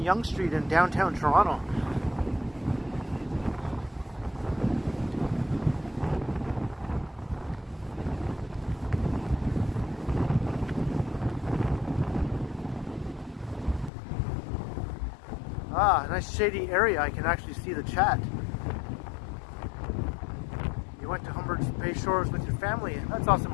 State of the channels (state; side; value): drops out; right; at 13.9 s